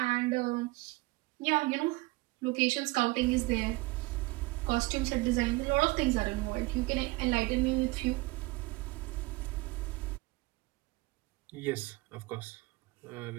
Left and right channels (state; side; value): quieter; left; 22.8 dB